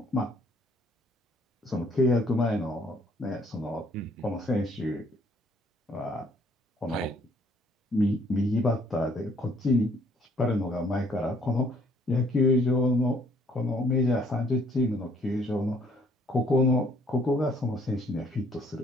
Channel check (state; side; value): normal; both; correlation 0.63